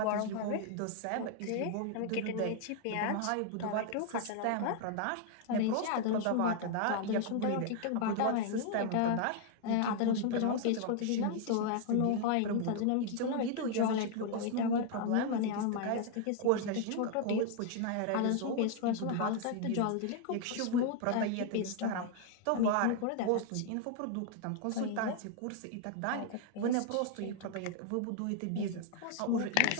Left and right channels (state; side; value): different; both; correlation 0.00